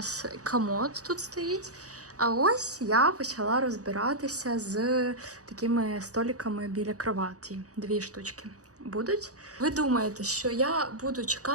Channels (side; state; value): left; late; 0.66 ms